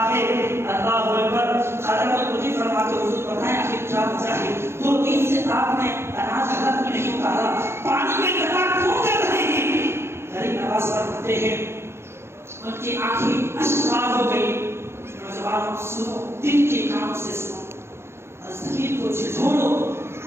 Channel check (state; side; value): late; left; 0.12 ms